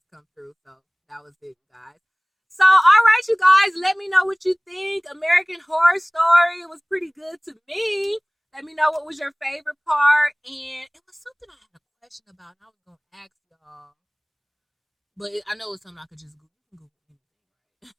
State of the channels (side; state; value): both; identical; correlation 1.00